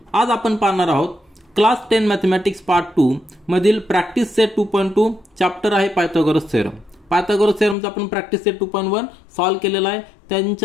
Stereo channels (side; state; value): right; drops out; at 7.8 s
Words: आज आपण पाहणार आहोत class 10 mathematics part 2 मधील practice set 2.2 chapter आहे Pythagoras theorem. Pythagoras थेरमचा आपण practice set 2.1 solve केलेला आहे.